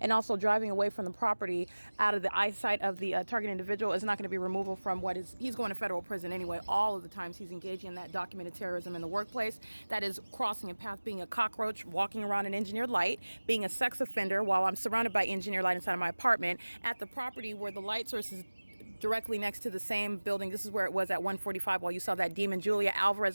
also driving away from the property out of the eyesight of the target individual is not going to be removal from he's going to federal prison anyway. All of the times he's engaging in that documented terrorism in the workplace, that is crossing a path, being a cockroach, walking around an engineered light, being a sex offender while I'm surrounded by engineered light inside of my apartment, at the property where the light source is directly next to the same building. This is where it was at 1:45 while you saw that demon Julia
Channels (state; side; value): inverted; both; correlation -1.00